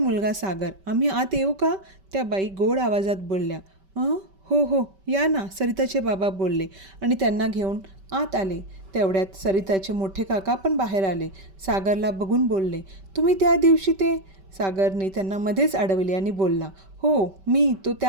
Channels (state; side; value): late; left; 5.2 ms